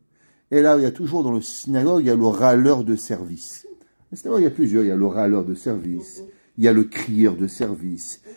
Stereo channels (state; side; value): inverted; both; correlation -1.00